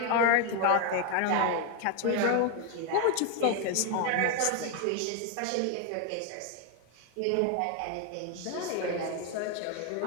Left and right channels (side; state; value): both; different; correlation 0.01